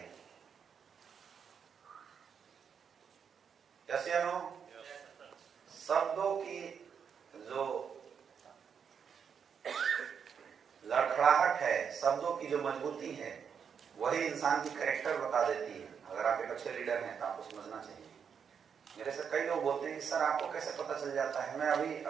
जैसे शब्दों की जो लड़खड़ाहट है, शब्दों की जो मजबूती है, वही इंसान की कैरेक्टर बता देती है। अगर आप एक अच्छे लीडर हैं तो आपको समझना चाहिए। मेरे से कई लोग बोलते हैं कि सर आपको कैसे पता चल जाता है। मैं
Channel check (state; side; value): quieter; left; 7.0 dB